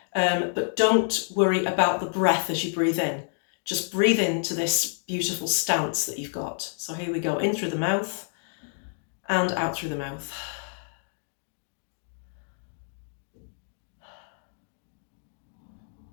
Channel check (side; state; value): right; silent; digital silence